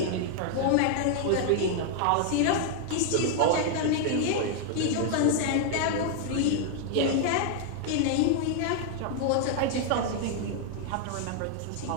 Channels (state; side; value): different; both; correlation -0.01